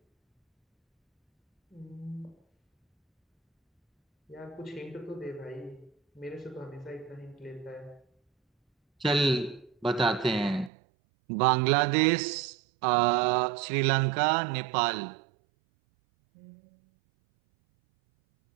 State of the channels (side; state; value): left; drops out; at 10.7 s